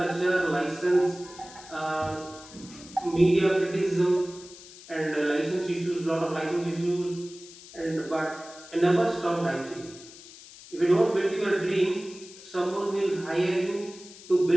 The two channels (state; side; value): noise; left; hiss, 18 dB below the sound